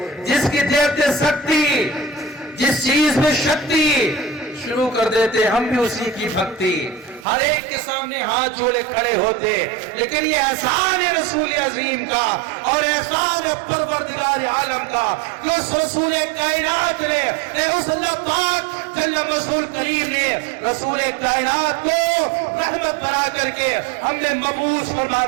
جس کی دیکھتے سکتی، جس چیز میں شکتی شروع کر دیتے ہم بھی اسی کی بھکتی، ہر ایک کے سامنے ہاتھ جوڑے کھڑے ہوتے۔ لیکن یہ احسان ہے رسول عظیم کا اور احسان ہے پروردگار عالم کا کہ اس رسول کائنات نے، اس اللہ پاک جل رسول کریم نے رسول کائنات کو رحمت بنا کر کے ہم نے مبعوث فرما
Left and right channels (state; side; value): drops out; left; at 7.2 s